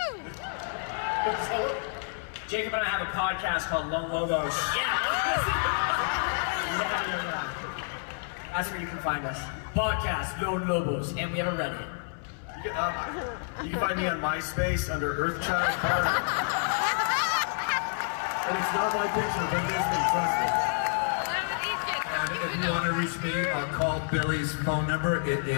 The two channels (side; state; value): right; silent; 59 dB below the other